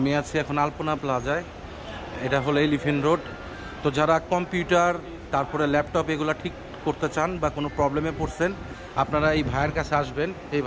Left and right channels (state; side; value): identical; both; correlation 1.00